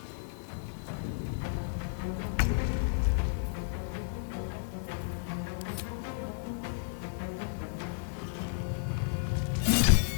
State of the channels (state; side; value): silent; right; digital silence